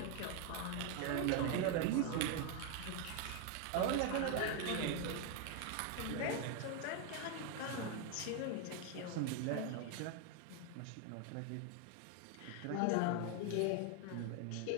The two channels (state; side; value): different; both; correlation 0.01